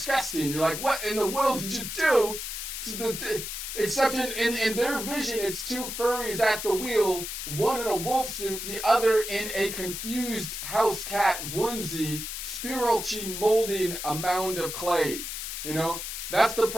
You're like, what in the world did you do to the except in their vision, it's two furries at the wheel, one in a wolf suit, the other in a confused house cat onesie, spiritually molding a mound of clay. That's the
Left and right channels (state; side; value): noise; left; hiss, 6 dB below the sound